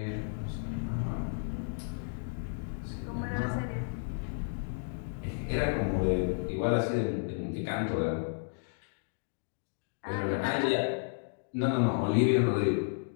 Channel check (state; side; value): silent; right; digital silence